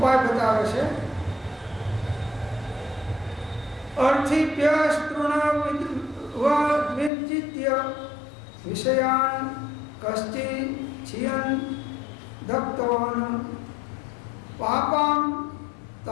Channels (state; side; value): drops out; right; at 7.1 s